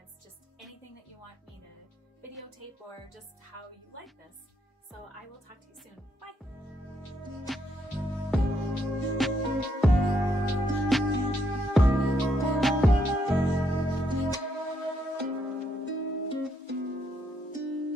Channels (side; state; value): both; normal; correlation 0.75